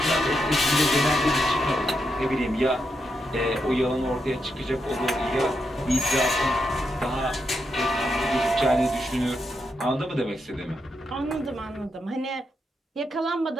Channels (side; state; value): both; normal; correlation 0.83